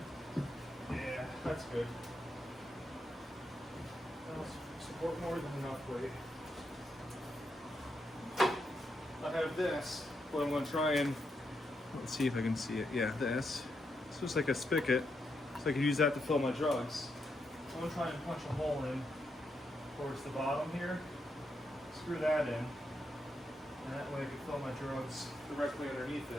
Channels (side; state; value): both; normal; correlation 0.82